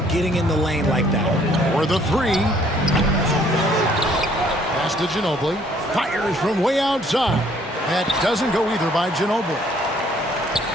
getting in the lane like that. For the three. Pass to Ginobili. Fires from way outside. That doesn't go either by Ginobili.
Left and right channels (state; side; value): normal; both; correlation 0.62